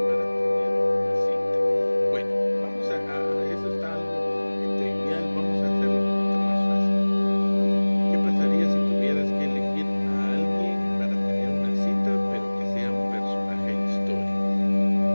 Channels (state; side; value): inverted; both; correlation -1.00